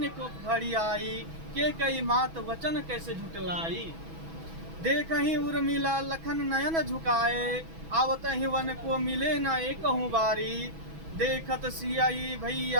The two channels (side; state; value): left; late; 6.1 ms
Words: को घड़ी आई, के कई मात वचन कैसे झुटलाई। देखहीं उर्मिला लखन नयन झुकाए, आवत ही वन को मिले न एकहु बारी। देखत सियाई